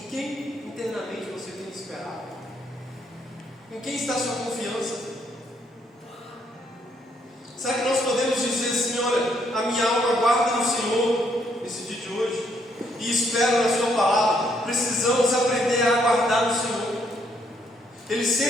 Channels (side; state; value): both; normal; correlation 0.72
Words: internamente você tem esperado? Em quem está a sua confiança? Será que nós podemos dizer assim: olha, a minha alma aguarda no Senhor nesse dia de hoje e espero na sua palavra? Precisamos aprender a aguardar no Senhor. Ele